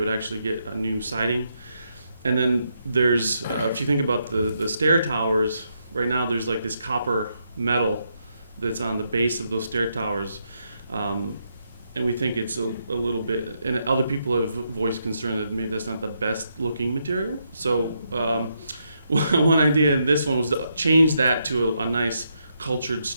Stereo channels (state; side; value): inverted; both; correlation -0.79